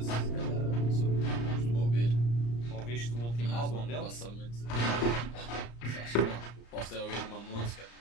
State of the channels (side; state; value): right; late; 34 ms